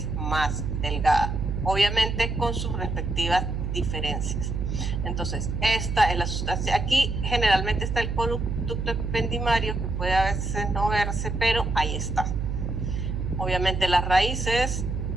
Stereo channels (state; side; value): noise; right; hum, 2 dB below the sound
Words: más delgada, obviamente con sus respectivas diferencias. Entonces, esta es la sustancia. Aquí generalmente está el conducto ependimario, que puede a veces no verse, pero ahí está. Obviamente las raíces